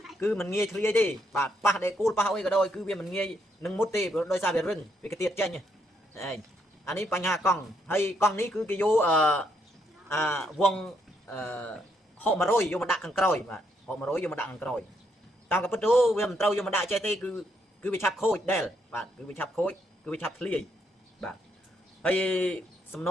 គឺមិនងាយធ្លាយទេបាទប៉ះដេគូលប៉ះអុយក៏ដោយគឺវាមិនងាយនឹងមុតទេដោយសារវារឹងវាកាទៀតចេញហ្នឹងអានេះបញ្ហាកង់ហើយកង់នេះគឺគេយកវង600យកមកដាក់ខាងក្រោយបាទ600យកមកដាក់ខាងក្រោយតាមក៏ពិតទៅវាមិនត្រូវយកមកដាក់ចេះទេគឺវាឆាប់ខូចដែរបាទគឺវាឆាប់ខូចគឺវាឆាប់ធ្លាយបាទហើយសំណ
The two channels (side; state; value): both; normal; correlation 0.75